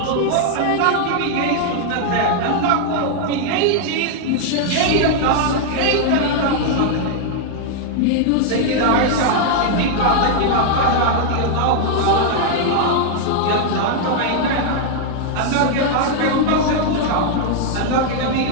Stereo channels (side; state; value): both; different; correlation 0.00